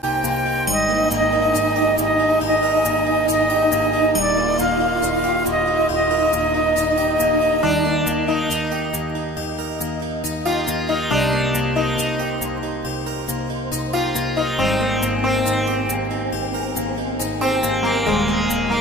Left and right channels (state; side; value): normal; both; correlation 0.51